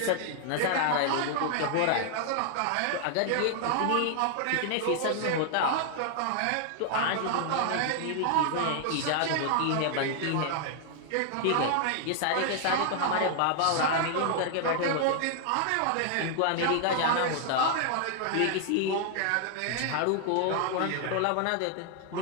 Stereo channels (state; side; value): different; both; correlation 0.00